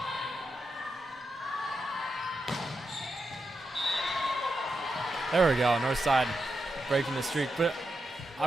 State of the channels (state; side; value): normal; both; correlation 0.86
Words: There we go, Northside breaking the streak. But